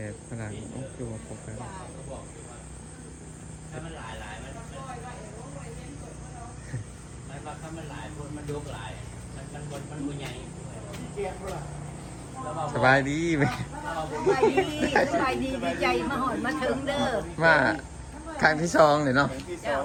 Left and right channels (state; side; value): identical; both; correlation 1.00